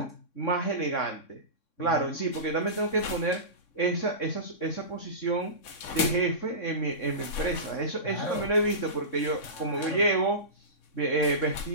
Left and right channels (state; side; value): late; right; 3.6 ms